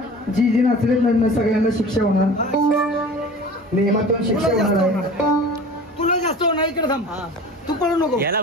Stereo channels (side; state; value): both; normal; correlation 0.40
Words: जी जी नाचले सगळ्यांना शिक्षा होणार. नियमातून शिक्षा होणार आहे. तुला जास्त होणार इकडे थांब. तू पळू नको. याला